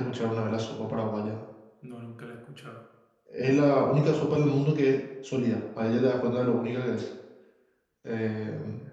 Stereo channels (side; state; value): both; identical; correlation 1.00